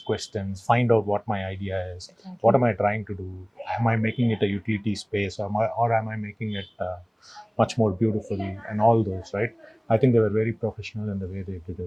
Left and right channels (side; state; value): both; identical; correlation 1.00